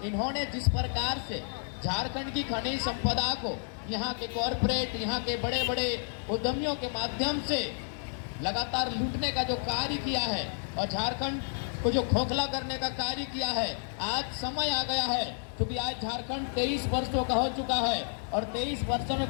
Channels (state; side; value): silent; right; digital silence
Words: इन्होंने जिस प्रकार से झारखंड की खनिज संपदा को यहाँ के कॉरपोरेट, यहाँ के बड़े बड़े उद्यमियों के माध्यम से लगातार लूटने का जो कार्य किया है और झारखंड को जो खोखला करने का कार्य किया है, आज समय आ गया है क्योंकि आज झारखंड 23 वर्षों का हो चुका है और 23 वर्षों